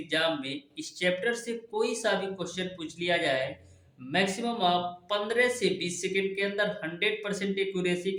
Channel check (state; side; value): identical; both; correlation 1.00